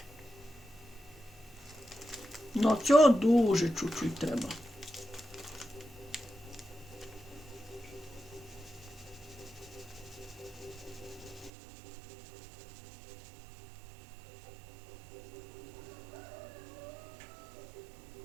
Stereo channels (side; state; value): left; drops out; at 11.5 s